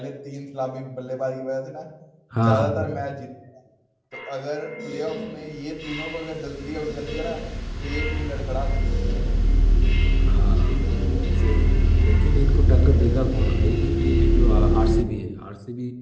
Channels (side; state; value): both; identical; correlation 1.00